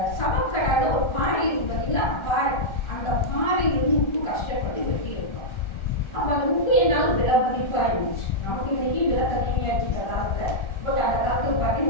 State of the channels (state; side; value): late; right; 1.3 ms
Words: சமக்கடால ஒரு பாறை இருக்கு பார்த்தீங்களா பாறை, அந்த பாறையிலிருந்து உப்பு கஷ்டப்பட்டு வெட்டி எடுத்தோம். அப்போ அந்த உப்பு என்னால் விலை மதிப்பாக இருந்துச்சு. நமக்கு இன்னைக்கு விலை கம்மியாச்சு இந்த காலத்தில். பட் அந்த காலத்தில்